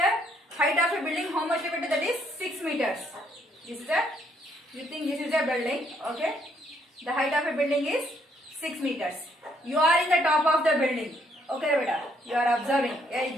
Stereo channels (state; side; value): normal; both; correlation 0.70